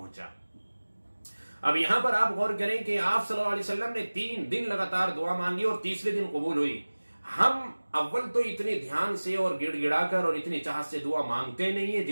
اب یہاں پر آپ غور کریں کہ آپ صلی اللہ علیہ وسلم نے 3 دن لگاتار دعا مانگی اور تیسرے دن قبول ہوئی. ہم اول تو اتنی دھیان سے اور گڑ گڑا کر اور اتنی چاہت سے دعا مانگتے نہیں ہیں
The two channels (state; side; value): inverted; both; correlation -1.00